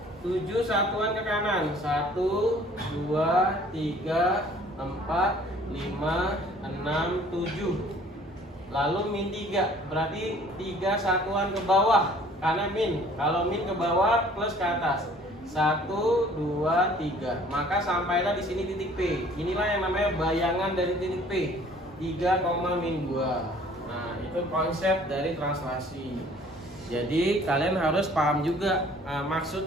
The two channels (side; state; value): both; normal; correlation 0.54